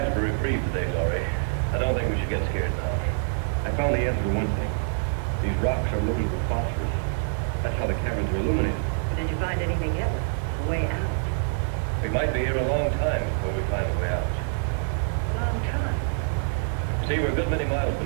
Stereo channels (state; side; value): silent; left; digital silence